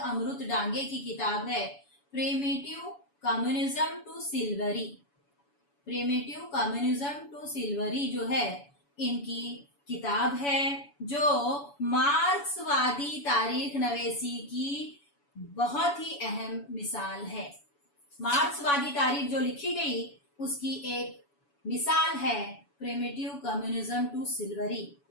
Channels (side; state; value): right; late; 7.0 ms